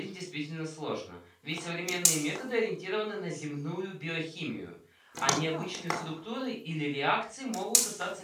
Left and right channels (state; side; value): identical; both; correlation 1.00